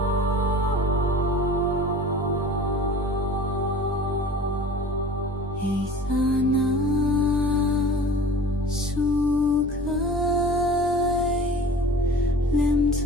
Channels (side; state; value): both; normal; correlation 0.41